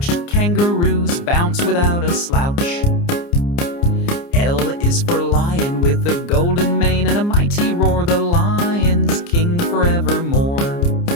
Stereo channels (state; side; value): late; right; 29 ms